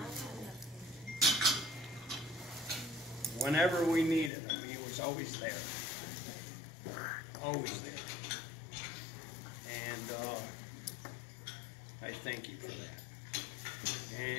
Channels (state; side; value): drops out; right; at 4.3 s